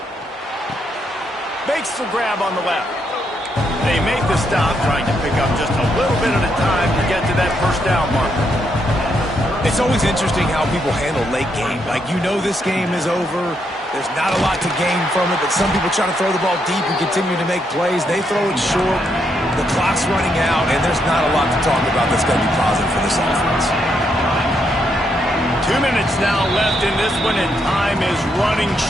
Makes the grab on the left. They make the stop, trying to pick up just a little bit at a time to get to that first down marker. It's always interesting how people handle late game. Like, you know this game is over. There's not a lot to gain from it, but some people try to throw the ball deep and continue to make plays. They throw it short. The clock's running out, and there's not a lot to talk about that's going to be positive for this offense. 2 minutes now left in this one, and time is running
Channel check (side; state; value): both; normal; correlation 0.78